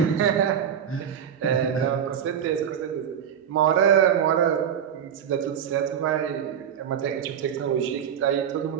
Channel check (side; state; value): left; quieter; 8.7 dB